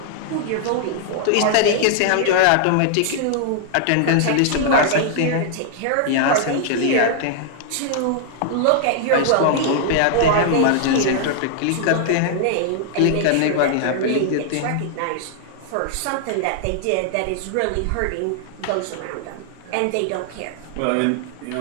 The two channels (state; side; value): different; both; correlation -0.01